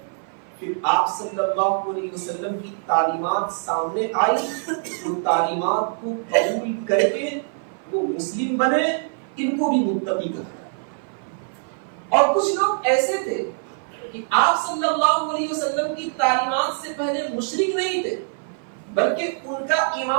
پھر آپ صلی اللہ علیہ وسلم کی تعلیمات سامنے آئی، ان تعلیمات کو قبول کر کے وہ مسلم بنے، ان کو بھی متقی کہا. اور کچھ لوگ ایسے تھے کہ آپ صلی اللہ علیہ وسلم کی تعلیمات سے پہلے مشرک نہیں تھے بلکہ ان کا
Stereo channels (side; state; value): left; silent; 56 dB below the other